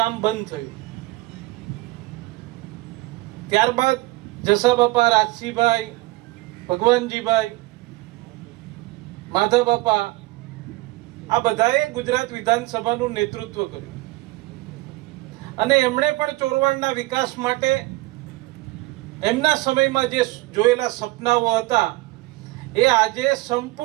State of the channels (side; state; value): left; quieter; 20.4 dB